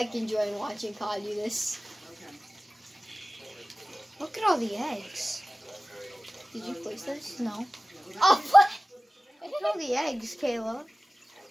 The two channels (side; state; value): both; normal; correlation 0.97